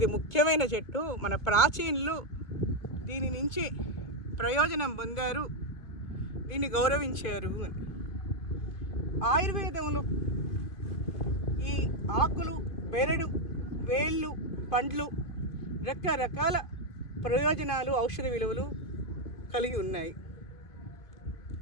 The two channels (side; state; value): right; late; 2.3 ms